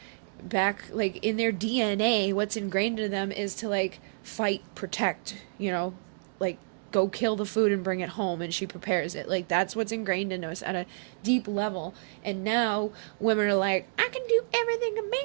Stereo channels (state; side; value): silent; left; digital silence